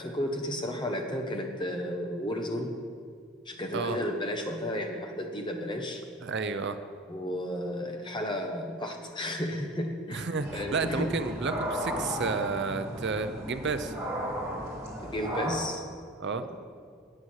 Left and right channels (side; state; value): both; normal; correlation 0.39